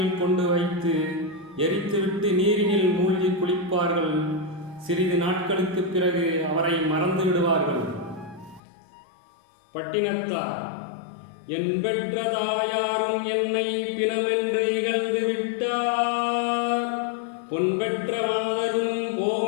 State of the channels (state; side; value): drops out; right; at 8.6 s